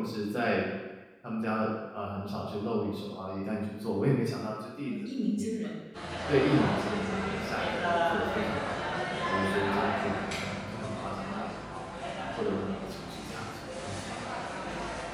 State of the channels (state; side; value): identical; both; correlation 1.00